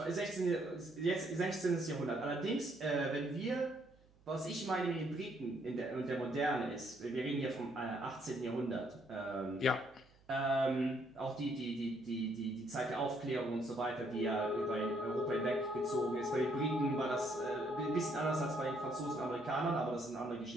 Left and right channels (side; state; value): right; noise; hum, 29 dB below the sound